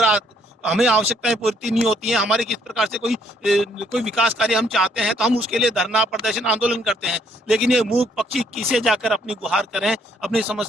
हमें आवश्यकताएं पूर्ति नहीं होती हैं, हमारे किस प्रकार से कोई विकास कार्य हम चाहते हैं, तो हम उसके लिए धरना, प्रदर्शन, आंदोलन करते हैं। लेकिन ये मूक पक्षी किसे जाकर अपनी गुहार करें अपनी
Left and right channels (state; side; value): normal; both; correlation 0.68